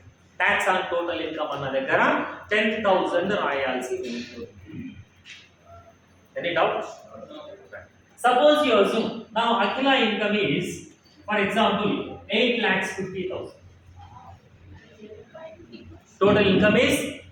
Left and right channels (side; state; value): both; identical; correlation 1.00